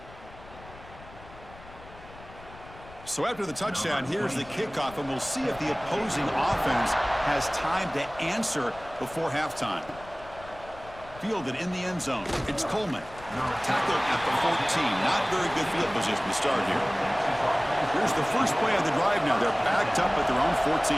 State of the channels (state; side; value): noise; left; rumble, 19 dB below the sound